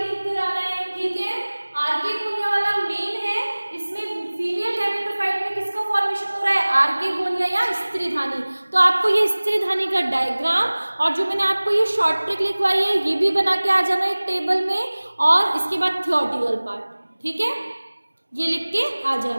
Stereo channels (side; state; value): both; inverted; correlation -1.00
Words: कर आना है. ठीक है, आर्केगोनिया वाला मेन है, इसमें फीमेल गैमेटोफाइट में किसका फॉर्मेशन हो रहा है, आर्केगोनिया या स्त्रीधानी. तो आपको ये स्त्रीधानी का डायग्राम और जो मैंने आपको ये शॉर्ट ट्रिक लिखवाई है ये भी बना के आ जाना एक टेबल में, और इसके बाद थ्योरेटिकल पार्ट. ठीक है, ये लिख के आ